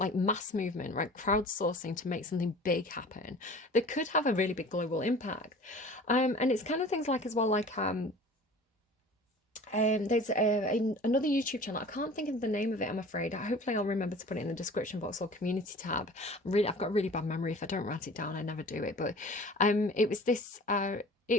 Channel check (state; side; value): normal; both; correlation 0.43